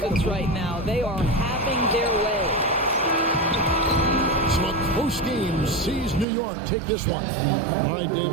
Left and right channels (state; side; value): drops out; left; at 6.2 s